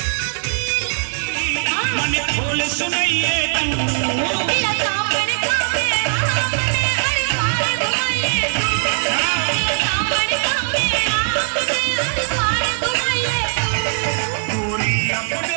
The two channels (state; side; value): silent; left; digital silence